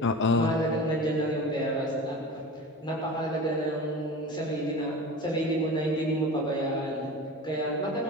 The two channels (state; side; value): normal; both; correlation 0.33